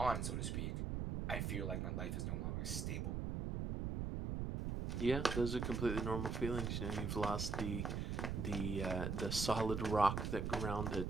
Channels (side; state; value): right; noise; rumble, 1 dB below the sound